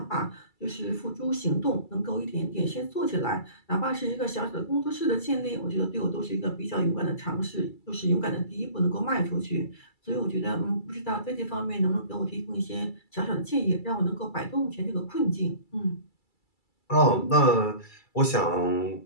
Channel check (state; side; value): late; right; 2.3 ms